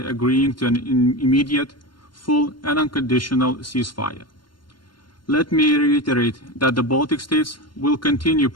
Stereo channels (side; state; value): right; late; 0.72 ms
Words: to an immediate, full and unconditional ceasefire. Let me reiterate that the Baltic states will continue